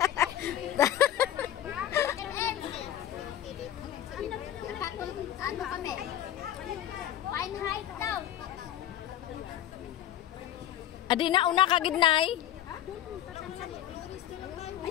Ano kami? Fine height daw. Adi na una kagidnay.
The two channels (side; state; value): right; quieter; 11.6 dB